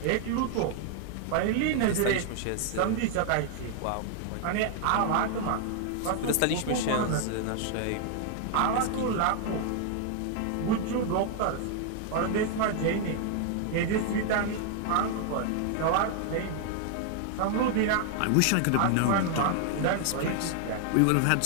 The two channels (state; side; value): different; both; correlation 0.00